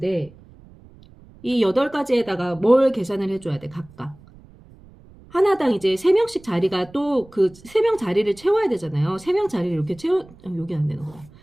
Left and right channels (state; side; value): noise; right; rumble, 24 dB below the sound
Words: 이 8가지에다가 뭘 계산을 해줘야 돼, 각각. 하나당 이제 3명씩 자리가 또 그 3명 자리를 채워야 되잖아요. 3명 자리를 이렇게 여기 안 되는 거야.